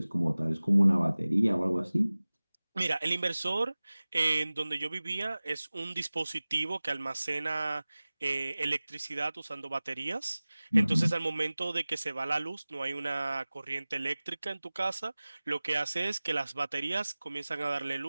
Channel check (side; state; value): both; inverted; correlation -0.99